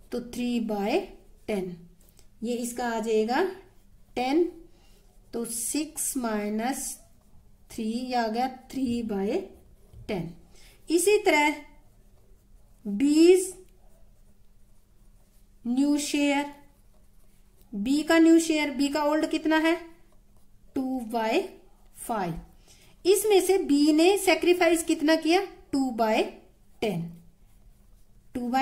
तो 3/10 ये इसका आ जाएगा 10, तो 6 - 3 आ गया 3/10। इसी तरह बीज न्यू शेयर, बी का न्यू शेयर, बी का ओल्ड कितना है 2/5। इसमें से बी ने सेक्रीफाइस कितना किया 2/10,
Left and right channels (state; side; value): identical; both; correlation 1.00